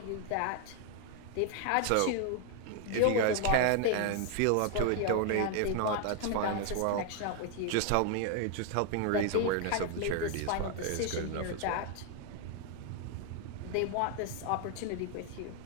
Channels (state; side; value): different; both; correlation 0.00